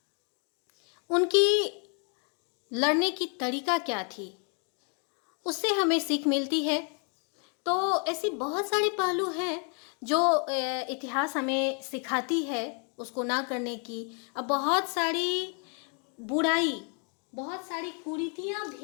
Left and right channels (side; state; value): right; quieter; 39.0 dB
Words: उनकी लड़ने की तरीका क्या थी, उससे हमें सीख मिलती है। तो ऐसी बहुत सारे पहलू हैं जो इतिहास हमें सिखाती है उसको ना करने की। अब बहुत सारी बुराई, बहुत सारी कुरीतियाँ